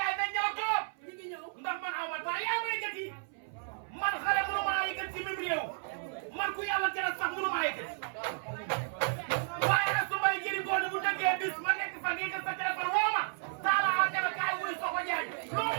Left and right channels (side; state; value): left; silent; 56 dB below the other